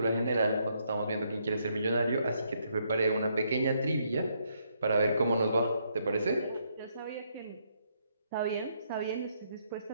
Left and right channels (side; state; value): both; inverted; correlation -0.74